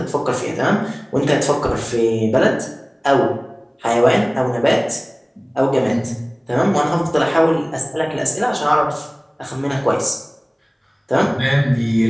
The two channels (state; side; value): identical; both; correlation 1.00